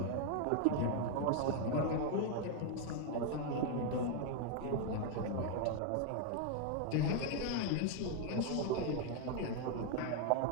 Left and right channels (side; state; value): both; different; correlation 0.01